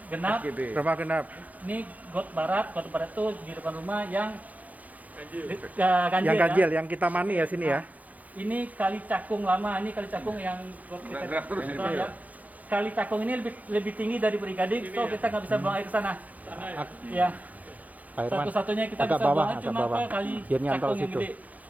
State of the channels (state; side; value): late; left; 0.077 ms